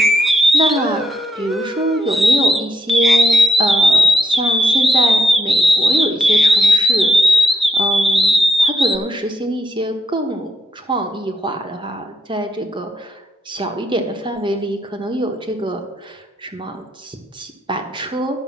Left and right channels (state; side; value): normal; both; correlation 0.77